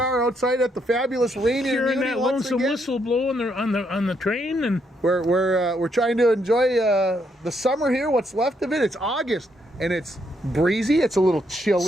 outside at the fabulous Rainier Hearing Muni that once lonesome again. whistle blow on the train, and We're trying to enjoy the summer here. What's left of it? It's August, and it's breezy. It's a little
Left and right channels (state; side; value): normal; both; correlation 0.75